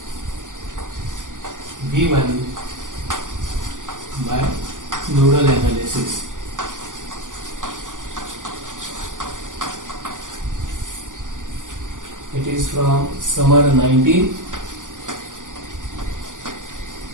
V1 by nodal analysis. It is from summer 19.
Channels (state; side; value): late; left; 0.88 ms